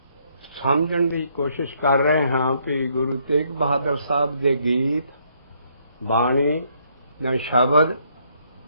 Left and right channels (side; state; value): both; inverted; correlation -0.70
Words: ਸਮਝਣ ਦੀ ਕੋਸ਼ਿਸ਼ ਕਰ ਰਹੇ ਹਾਂ ਕਿ ਗੁਰੂ ਤੇਗ ਬਹਾਦਰ ਸਾਹਿਬ ਦੇ ਗੀਤ ਬਾਣੀ ਜਾਂ ਸ਼ਬਦ